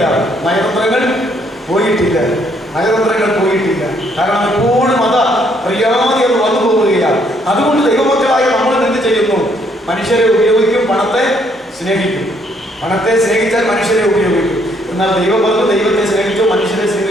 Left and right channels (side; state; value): both; normal; correlation 0.68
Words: നയതന്ത്രങ്ങൾ പോയിട്ടില്ല. നയതന്ത്രങ്ങൾ പോയിട്ടില്ല. കാരണം എപ്പോഴും അറിയാതെ അത് വന്നു പോവുകയാണ്. അതുകൊണ്ട് ദൈവമക്കളായ നമ്മൾ എന്ത് ചെയ്യുന്നു? മനുഷ്യരെ ഉപയോഗിക്കും, പണത്തെ സ്നേഹിക്കും. പണത്തെ സ്നേഹിച്ചാൽ മനുഷ്യരെ ഉപയോഗിക്കും. എന്നാൽ ദൈവം പറഞ്ഞു, ദൈവത്തെ സ്നേഹിച്ചോ, മനുഷ്യരെ